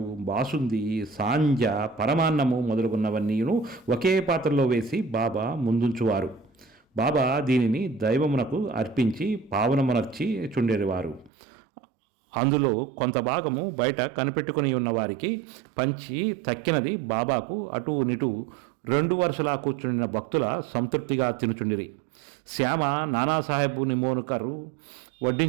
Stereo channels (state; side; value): drops out; left; at 11.3 s